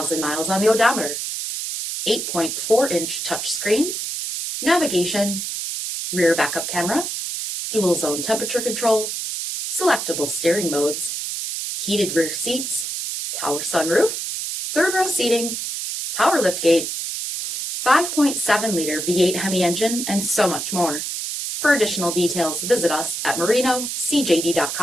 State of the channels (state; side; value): noise; right; hiss, 4 dB below the sound